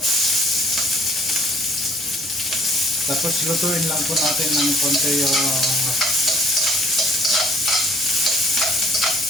Tapos lutuin lang po natin ng konti yung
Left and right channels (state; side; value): normal; both; correlation 0.60